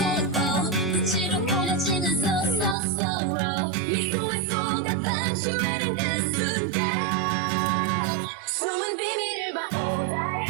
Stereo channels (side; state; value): left; drops out; at 2.8 s